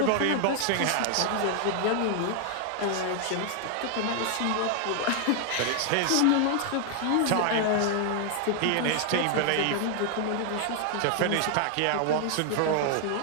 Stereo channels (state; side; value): different; both; correlation 0.00